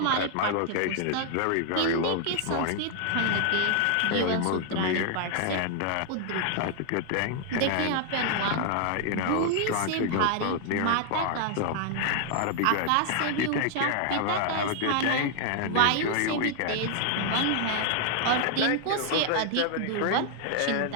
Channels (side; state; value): both; different; correlation 0.00